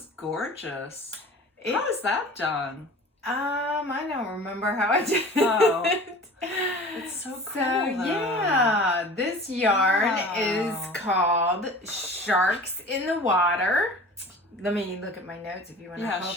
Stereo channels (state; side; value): normal; both; correlation 0.41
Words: gorgeous. It- How is that done? I don't remember how I did Oh. it. It's so cool, So though. yeah, this yarn Wow. is called Sharks in the Water. Let me look at my notes if you want to Yeah, hold